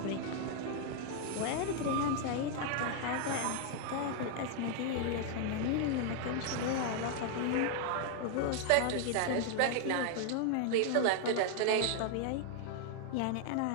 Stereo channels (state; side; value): different; both; correlation 0.00